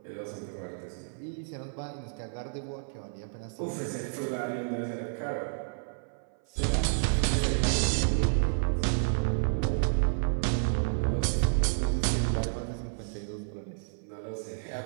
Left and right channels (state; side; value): silent; left; 55 dB below the other